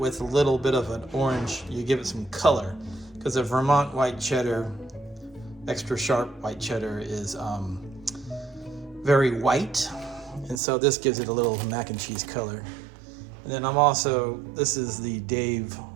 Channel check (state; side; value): drops out; left; at 10.6 s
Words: a little bit of an orange, you give it some color, because the Vermont white cheddar, extra sharp white cheddar, is very white, and so this gives it a little mac and cheese color. And then this is the Dave